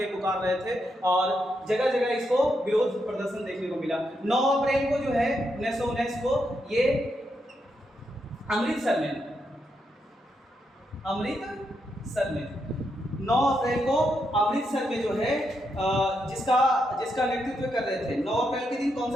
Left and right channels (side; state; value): both; normal; correlation 0.81